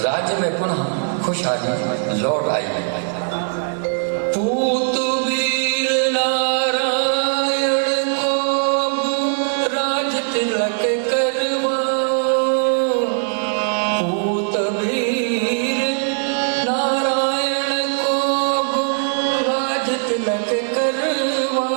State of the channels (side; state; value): left; silent; 66 dB below the other